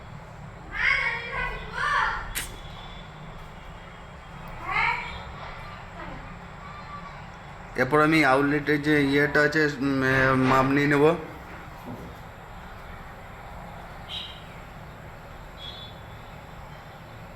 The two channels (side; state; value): both; identical; correlation 1.00